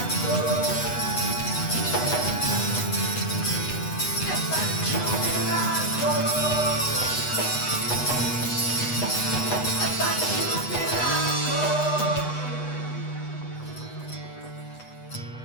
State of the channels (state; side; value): late; right; 8.1 ms